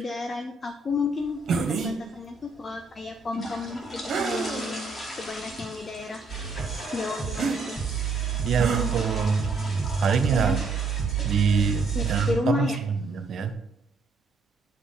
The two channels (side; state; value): left; quieter; 3.6 dB